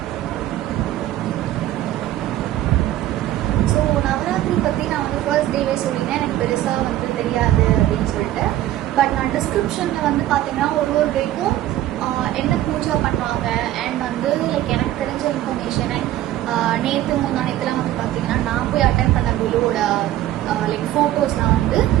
ஃபர்ஸ்ட் டேவே சொல்லிங்கன்னா எனக்கு பெருசாக வந்து தெரியாது அப்படின்னு சொல்லிட்டு, பட் நான் டிஸ்கிரிப்ஷனில் வந்து பார்த்தீங்கன்னா ஒரு டேக்கும் என்ன பூஜா பண்ணுவாங்க அண்ட் வந்து லைக் எனக்கு தெரிஞ்ச இன்ஃபர்மேஷன் அண்ட் நேற்று முன்னாடிலாம் வந்து பார்த்தீங்கன்னா நான் போய் அட்டன் பண்ண குழுவோட லைக் ஃபோட்டோஸ்லாம் வந்து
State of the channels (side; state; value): left; quieter; 13.8 dB